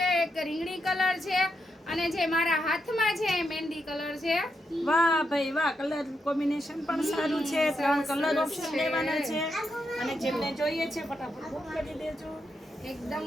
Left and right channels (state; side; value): normal; both; correlation 0.83